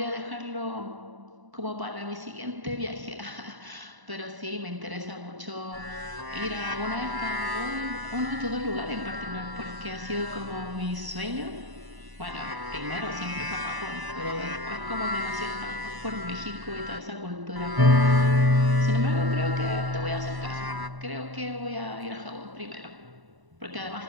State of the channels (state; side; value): late; left; 1.0 ms